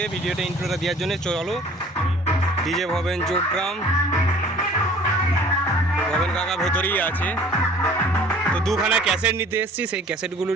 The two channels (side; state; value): both; normal; correlation 0.50